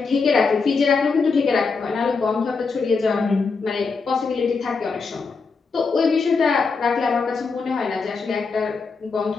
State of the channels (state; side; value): quieter; right; 4.7 dB